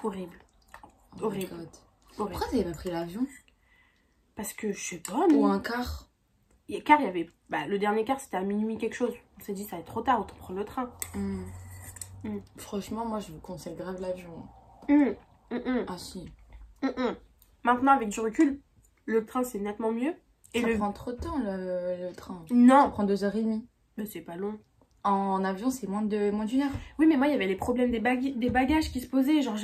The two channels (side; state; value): both; identical; correlation 1.00